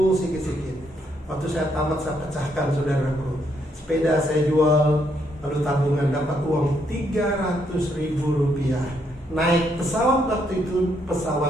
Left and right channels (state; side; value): normal; both; correlation 0.74